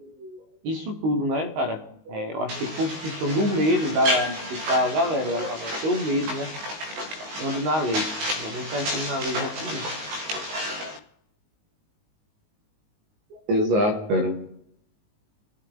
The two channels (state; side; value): late; left; 19 ms